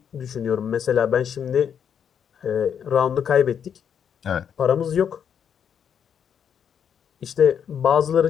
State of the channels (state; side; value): quieter; right; 8.0 dB